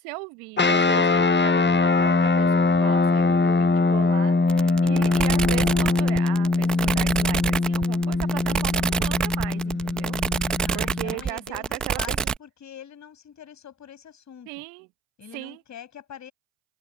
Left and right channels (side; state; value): both; normal; correlation 0.57